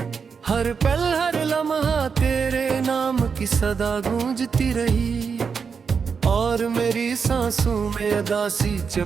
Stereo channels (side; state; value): left; quieter; 5.9 dB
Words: हर पल हर लम्हा तेरे नाम की सदा गूंजती रही, और मेरी सांसों में अदासी